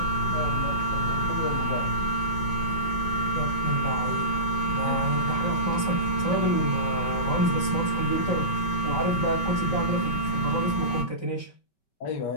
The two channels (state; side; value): late; right; 5.2 ms